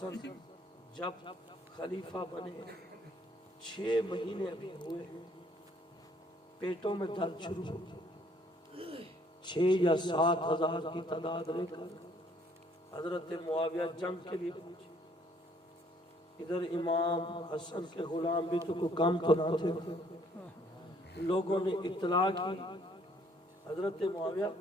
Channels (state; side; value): normal; both; correlation 0.63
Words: جب خلیفہ بنے 6 مہینے ابھی ہوئے ہیں، پیٹوں میں درد شروع ہو، 6 یا 7 ہزار کی تعداد لے کر حضرت معاویہ جنگ کے لیے پہنچے. ادھر امام حسن کے غلام بھی تو کوئی کام تو نہ تھے. لوگوں نے اطلاع کی حضرت معاویہ